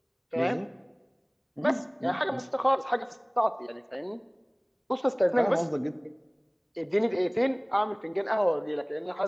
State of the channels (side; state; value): both; identical; correlation 1.00